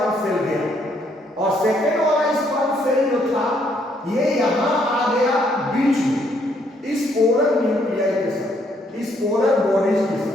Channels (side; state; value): both; normal; correlation 0.70